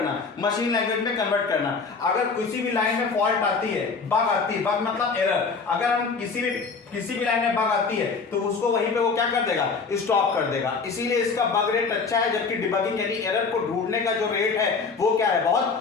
मशीन लैंग्वेज में कन्वर्ट करना। अगर किसी भी लाइन में फॉल्ट आती है, बग आती है, बग मतलब एरर, अगर हम किसी भी लाइन में बग आती है तो उसको वहीं पे वो क्या कर देगा, स्टॉप कर देगा। इसीलिए इसका बग रेट अच्छा है, जबकि डिबगिंग यानी एरर को ढूंढने का जो रेट है वो क्या है,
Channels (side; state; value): right; quieter; 4.8 dB